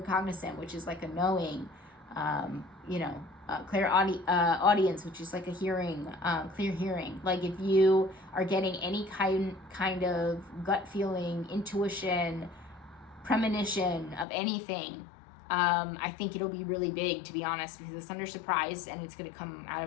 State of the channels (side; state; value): right; drops out; at 14.2 s